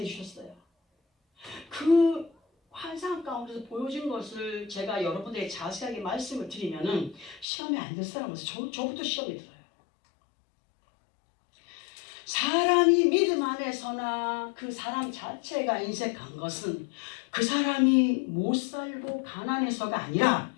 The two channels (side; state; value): right; drops out; at 7.5 s